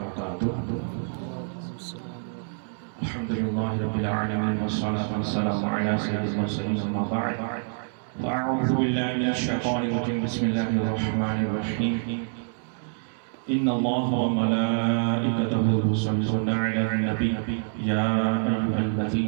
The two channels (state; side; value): silent; left; digital silence